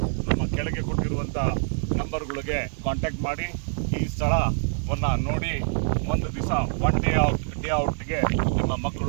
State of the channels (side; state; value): left; silent; digital silence